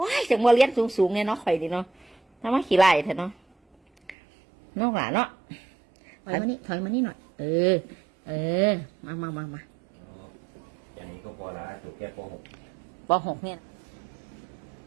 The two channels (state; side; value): drops out; left; at 4.2 s